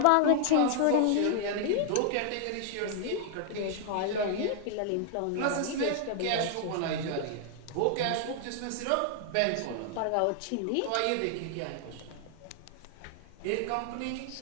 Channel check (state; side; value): different; both; correlation 0.00